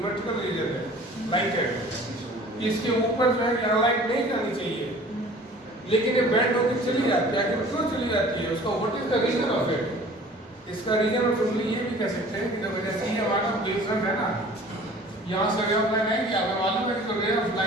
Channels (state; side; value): normal; both; correlation 0.47